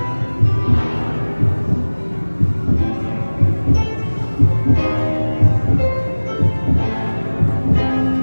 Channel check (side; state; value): both; inverted; correlation -1.00